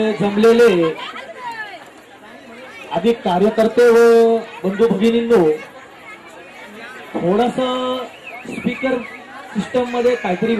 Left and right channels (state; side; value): identical; both; correlation 1.00